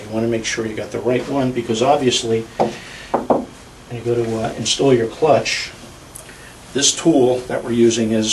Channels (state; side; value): identical; both; correlation 1.00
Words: want to make sure you got the right one, because obviously when you go to install your clutch, this tool that we're using